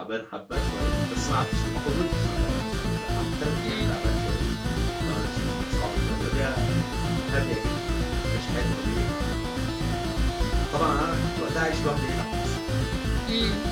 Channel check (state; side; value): identical; both; correlation 1.00